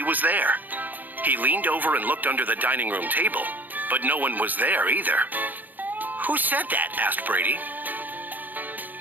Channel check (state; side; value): late; left; 0.084 ms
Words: was there. He leaned over and looked under the dining room table, but no one was there either. Who said that? Asked Brady.